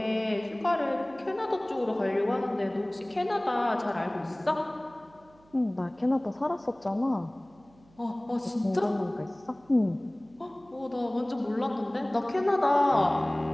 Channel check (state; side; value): noise; right; hum, 29 dB below the sound